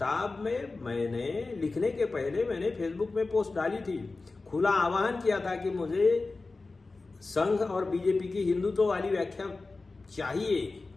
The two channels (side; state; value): right; quieter; 3.6 dB